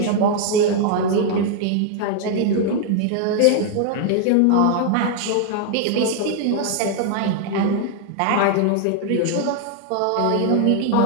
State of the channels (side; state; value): both; different; correlation 0.00